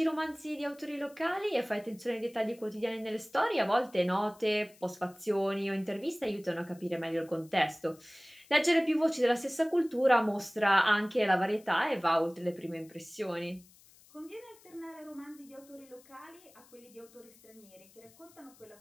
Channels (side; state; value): left; noise; hiss, 26 dB below the sound